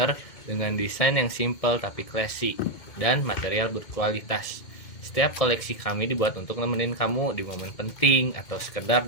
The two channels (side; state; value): right; late; 2.1 ms